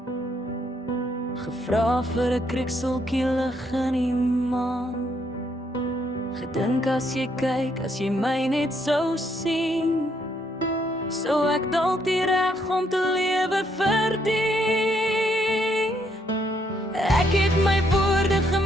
gevra vir 'n krikseltjie lig in die maan. Gedink as jy kyk, as jy my net sou sien, sou ek dalk die reg om te lewe verdien. Ek het my woorde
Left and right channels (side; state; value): both; normal; correlation 0.72